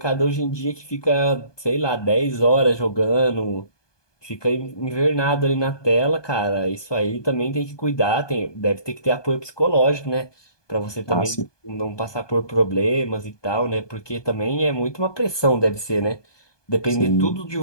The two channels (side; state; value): right; late; 1.2 ms